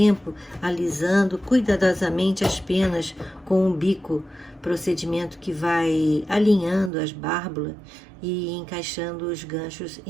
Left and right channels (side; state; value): left; drops out; at 6.9 s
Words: alisando cuidadosamente as penas com um bico, procedimento que vai alinhando as bárbulas e encaixando os ganchos